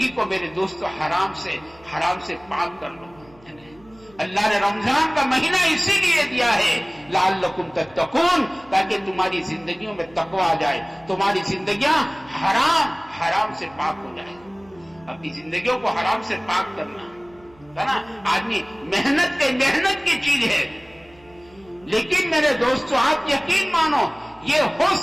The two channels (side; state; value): right; noise; hum, 28 dB below the sound